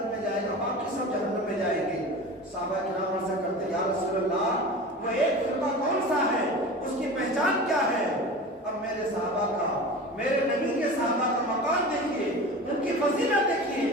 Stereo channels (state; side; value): normal; both; correlation 0.34